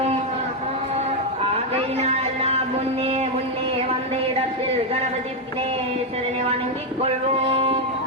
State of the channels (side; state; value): both; normal; correlation 0.03